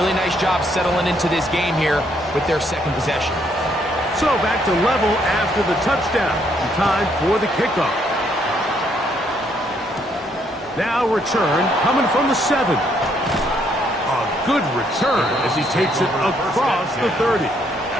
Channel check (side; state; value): both; normal; correlation 0.71